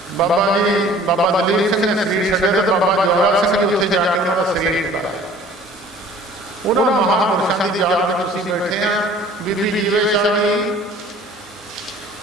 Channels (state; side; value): normal; both; correlation 0.50